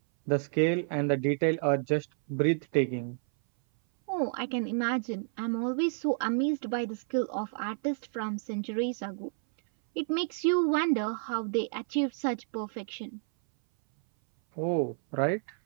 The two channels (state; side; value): silent; left; 58 dB below the other